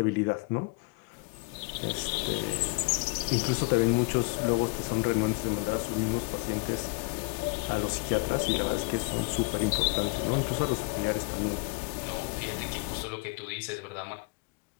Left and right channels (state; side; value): quieter; right; 31.3 dB